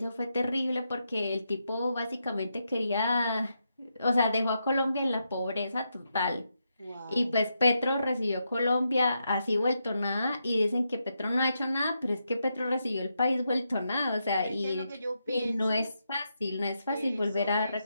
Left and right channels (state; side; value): inverted; both; correlation -0.83